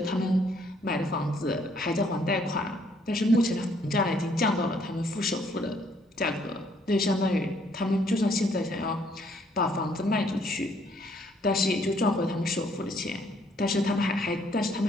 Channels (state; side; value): normal; both; correlation 0.66